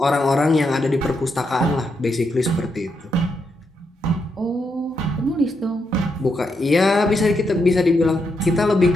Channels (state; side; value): normal; both; correlation 0.81